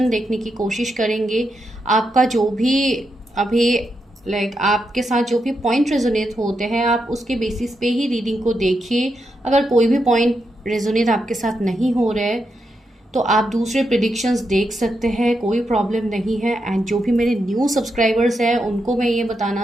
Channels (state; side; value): normal; both; correlation 0.84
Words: देखने की कोशिश करेंगे। आपका जो भी अभी आपके साथ जो भी पॉइंट रेजोनेट होते हैं, आप उसके बेसिस पे ही रीडिंग को देखिए। अगर कोई भी पॉइंट रेजोनेट आपके साथ नहीं हो रहा है तो आप दूसरे प्रिडिक्शंस देख सकते हैं, कोई प्रॉब्लम नहीं है। एंड जो भी मेरे न्यू सब्सक्राइबर्स हैं उनको मैं ये